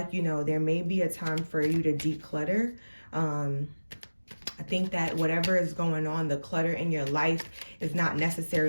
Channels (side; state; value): both; inverted; correlation -1.00